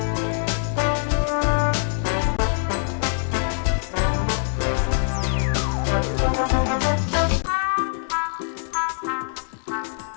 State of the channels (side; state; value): right; silent; digital silence